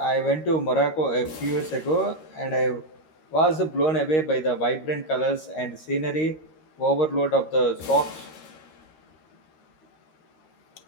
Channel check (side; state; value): right; late; 13 ms